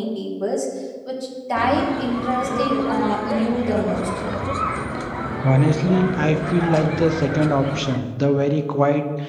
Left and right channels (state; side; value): identical; both; correlation 1.00